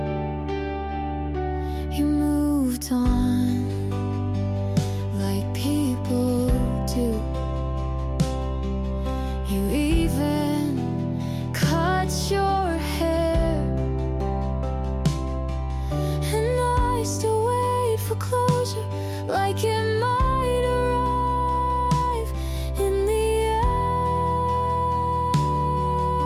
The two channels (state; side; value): identical; both; correlation 1.00